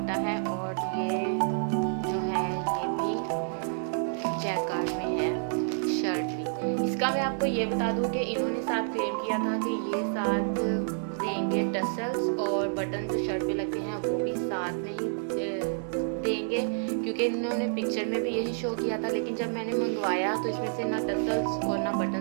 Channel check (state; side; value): silent; left; 58 dB below the other